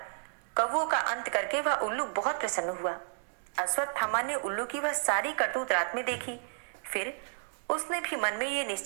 कौवों का अंत करके वह उल्लू बहुत प्रसन्न हुआ। अश्वत्थामा ने उल्लू की वह सारी करतूत रात में देखी। फिर उसने भी मन में ये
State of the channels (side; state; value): left; silent; digital silence